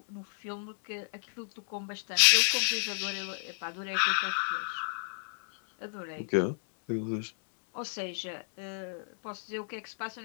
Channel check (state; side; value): silent; right; 56 dB below the other